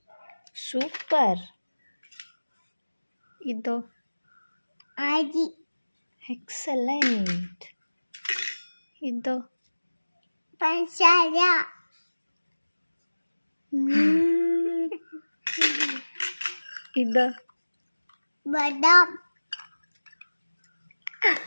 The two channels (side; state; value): both; inverted; correlation -1.00